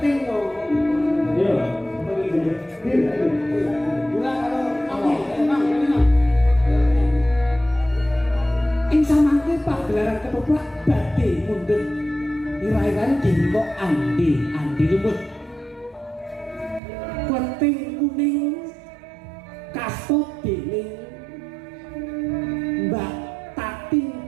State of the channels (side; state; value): left; drops out; at 16.8 s